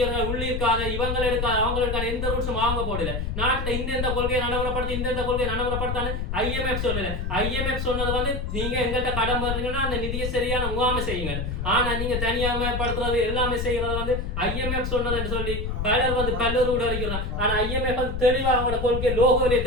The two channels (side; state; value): left; noise; rumble, 3 dB below the sound